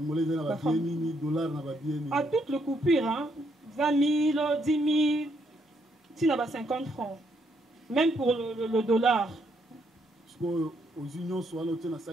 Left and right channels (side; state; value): both; normal; correlation 0.74